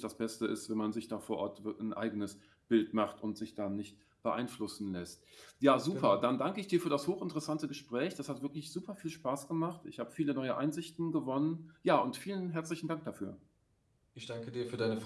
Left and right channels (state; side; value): identical; both; correlation 1.00